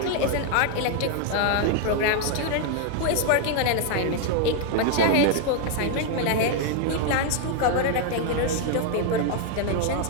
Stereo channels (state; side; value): different; both; correlation 0.00